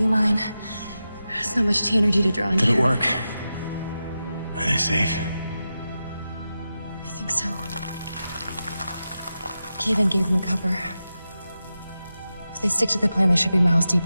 mine. There's not much energy to draw on. Did here. it work? Are they safe? I think so. Kaven gave them cover. If they stick to the plan, they should be miles deep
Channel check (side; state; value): both; inverted; correlation -0.91